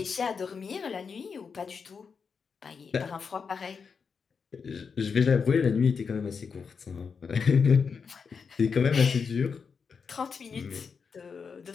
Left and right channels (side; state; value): right; quieter; 5.8 dB